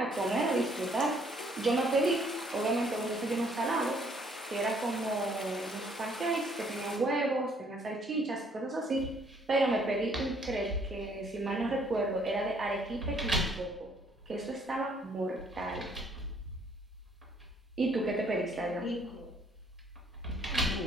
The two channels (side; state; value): both; normal; correlation 0.64